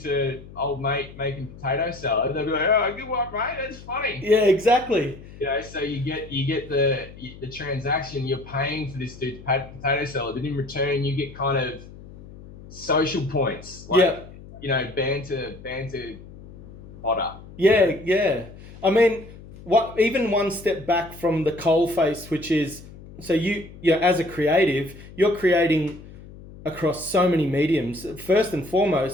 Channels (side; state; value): left; noise; hum, 18 dB below the sound